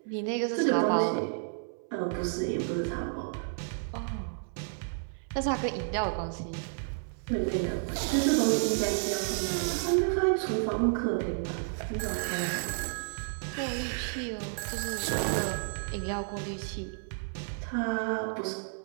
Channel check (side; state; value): left; silent; 57 dB below the other